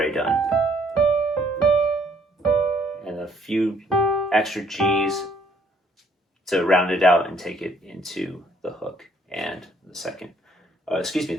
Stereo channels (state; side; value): normal; both; correlation 0.65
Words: done. And a few extra G's to round it out and take it into the hook and